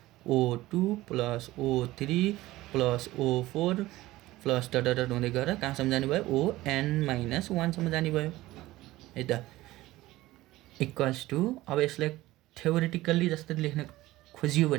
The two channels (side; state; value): left; quieter; 17.4 dB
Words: O2 plus O3 plus O4 plus dot हुँदै गएर कहाँसम्म जाने भयो ON - 1सम्म जाने भयो है त। इक्वल्स टु अब यसलाई थ्योरिटिकल्ली जस्तै लेख्न खोजियो